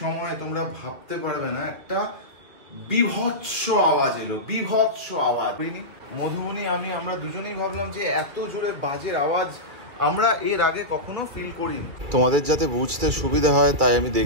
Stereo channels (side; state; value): left; late; 2.3 ms